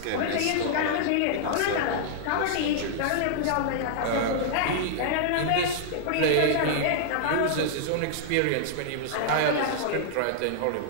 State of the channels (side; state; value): both; different; correlation -0.01